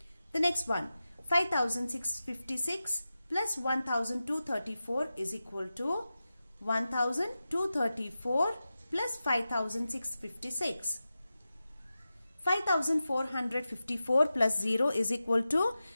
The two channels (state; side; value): inverted; both; correlation -0.93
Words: The next one. 5656 plus 1234 is equal to 1234 plus 5656. 5454 plus 0 is equal to